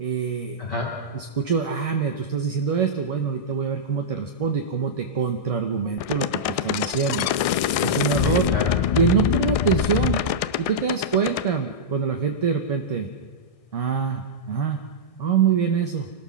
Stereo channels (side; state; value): right; late; 1.6 ms